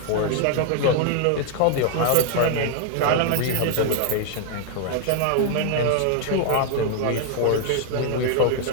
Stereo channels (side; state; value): both; different; correlation 0.00